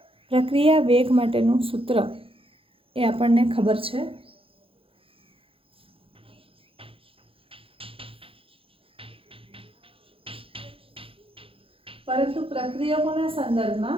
प्रक्रिया वेग माटेनुं सूत्र ए आपणने खबर छे। परंतु प्रक्रियकोना संदर्भमां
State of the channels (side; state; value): left; late; 0.27 ms